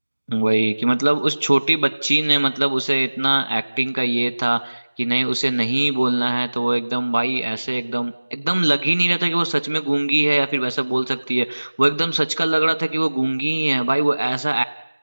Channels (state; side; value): inverted; both; correlation -1.00